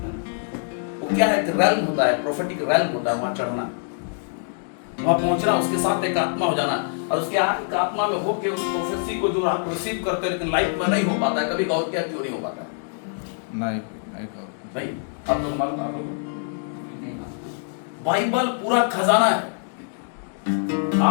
वो क्या है, रैल्म होता है, प्रोफेटिक रैल्म होता है, वहां चढ़ना, वहां पहुंचना, उसके साथ एक आत्मा हो जाना, और उसके एक आत्मा में होके उस प्रोफेसी को जो आप रिसीव करते हैं, लेकिन लाइफ में नहीं हो पाता है। कभी गौर किया क्यों नहीं हो पाता है? नहीं आप लोग मालूम, आप लोग बाइबल पूरा खजाना है।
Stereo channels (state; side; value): silent; right; digital silence